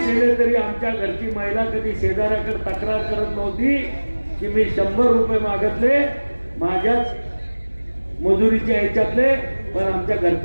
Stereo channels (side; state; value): both; inverted; correlation -1.00